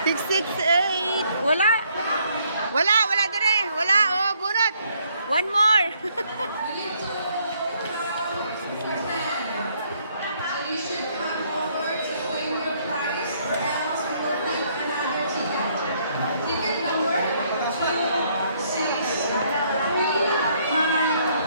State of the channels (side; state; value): both; inverted; correlation -0.68